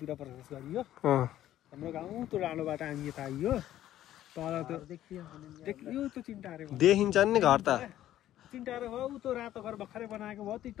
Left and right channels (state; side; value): quieter; right; 12.8 dB